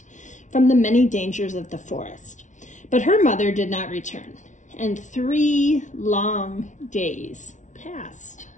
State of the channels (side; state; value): right; late; 0.36 ms